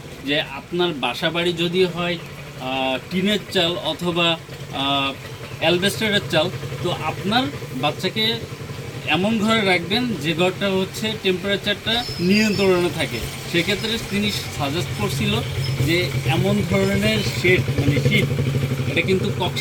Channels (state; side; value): identical; both; correlation 1.00